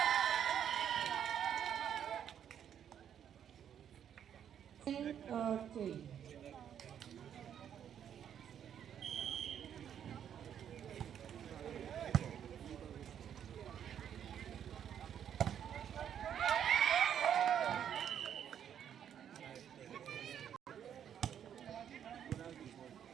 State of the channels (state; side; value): quieter; left; 9.2 dB